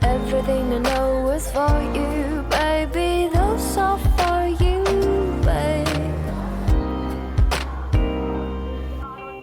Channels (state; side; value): identical; both; correlation 1.00